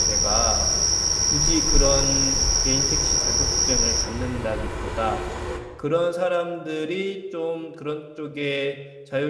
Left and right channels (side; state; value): both; identical; correlation 1.00